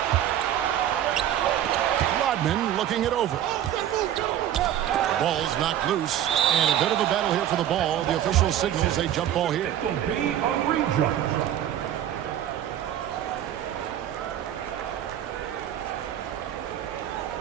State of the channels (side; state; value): left; quieter; 11.2 dB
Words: Rodman looking it over. Ball's knocked loose. And a bit of a battle here for the ball. The official signals a jump ball here. It will be a re-jump.